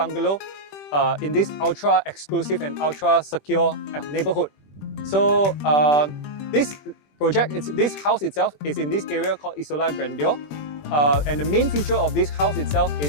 in this ultra exclusive and ultra secure neighborhood. So this house itself is in this area called Isola Grandeur, and the main feature of this house itself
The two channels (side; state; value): right; late; 20 ms